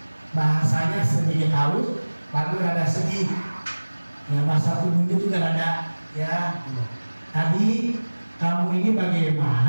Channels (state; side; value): inverted; both; correlation -1.00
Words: bahasanya sedikit halus, lalu rada sedih. Ya, bahasa tubuhnya juga rada ya. Tadi kamu ini